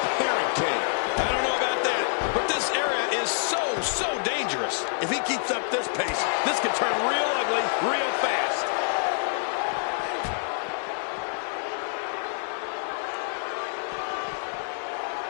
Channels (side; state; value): right; silent; digital silence